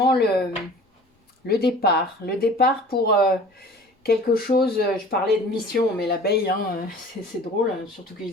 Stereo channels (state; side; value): normal; both; correlation 0.45